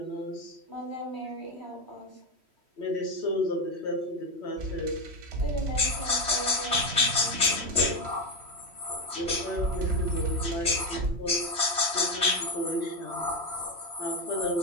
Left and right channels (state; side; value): late; left; 3.1 ms